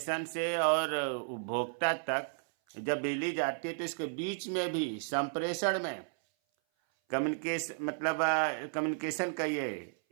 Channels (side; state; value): left; silent; 55 dB below the other